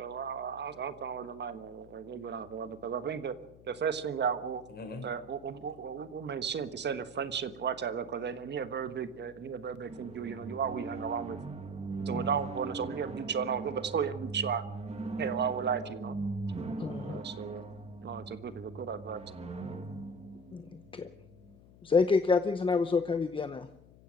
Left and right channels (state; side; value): noise; left; hum, 22 dB below the sound